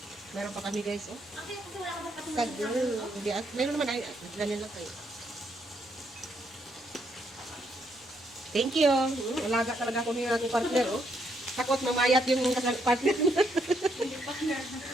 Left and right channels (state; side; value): normal; both; correlation 0.74